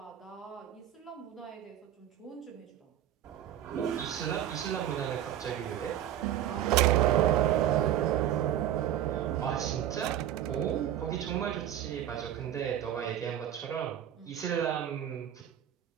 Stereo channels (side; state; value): left; quieter; 11.2 dB